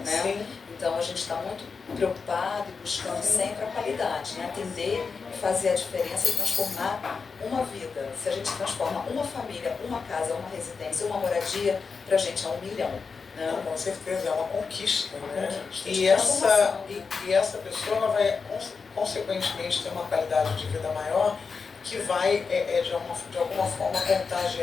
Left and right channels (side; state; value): right; quieter; 5.1 dB